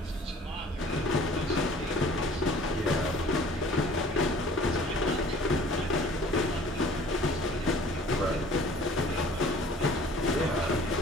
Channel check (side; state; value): both; normal; correlation 0.50